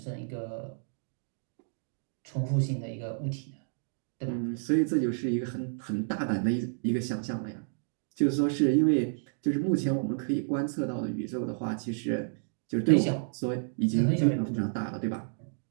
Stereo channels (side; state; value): left; silent; digital silence